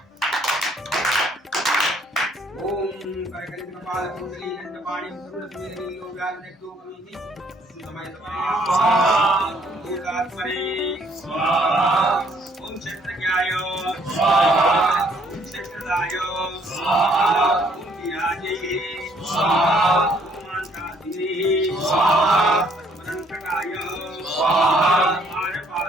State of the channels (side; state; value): both; normal; correlation 0.65